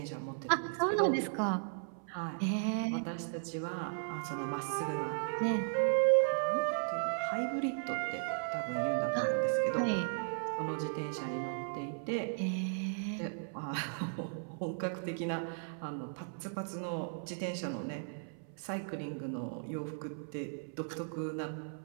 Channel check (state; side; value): silent; left; 54 dB below the other